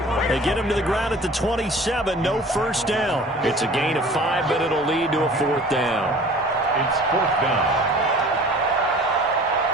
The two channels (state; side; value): normal; both; correlation 0.46